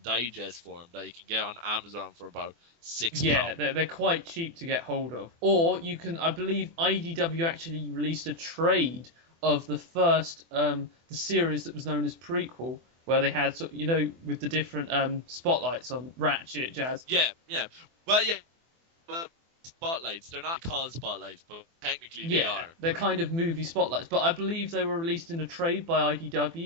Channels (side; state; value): left; late; 24 ms